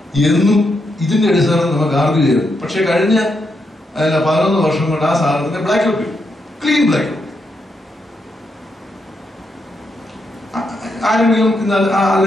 എന്നും ഇതിന്റെ അടിസ്ഥാനത്തിൽ നമുക്ക് ആർഗ്യൂ ചെയ്തു. പക്ഷെ കഴിഞ്ഞ 11 വർഷം കൊണ്ട് ആ സാധനത്തിന്റെ ബ്ലാക്ക് ഔട്ട് ചെയ്തു, ക്ലീൻ ബ്ലാക്ക് ഔട്ട്. ആരെങ്കിലും ഇന്ന്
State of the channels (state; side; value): normal; both; correlation 0.82